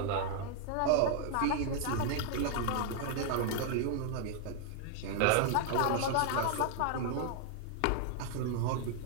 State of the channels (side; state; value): both; different; correlation 0.00